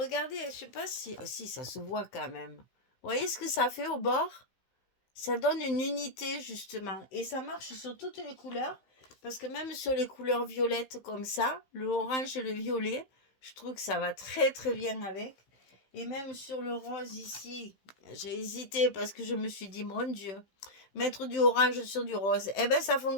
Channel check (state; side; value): late; right; 15 ms